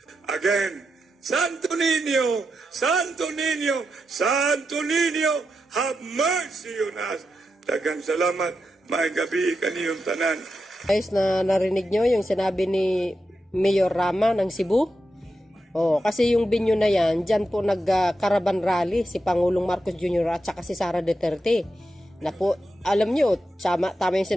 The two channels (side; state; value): both; normal; correlation 0.87